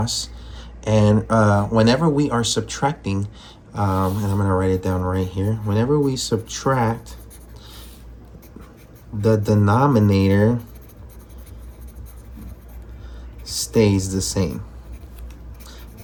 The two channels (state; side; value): identical; both; correlation 1.00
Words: And whenever we are subtracting, and I'm going to write it down right here. Whenever we subtract, the denominator stays the same.